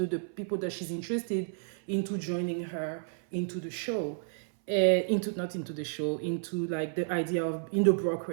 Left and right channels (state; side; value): silent; left; 57 dB below the other